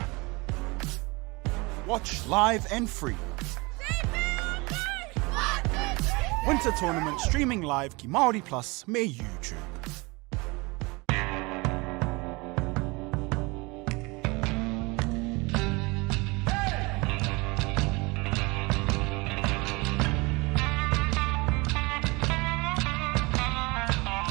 Watch live and free. Winter tournament streaming live ki Māori Plus me YouTube.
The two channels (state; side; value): quieter; left; 25.6 dB